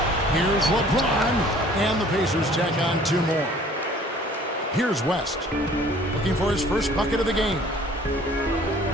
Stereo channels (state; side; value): normal; both; correlation 0.53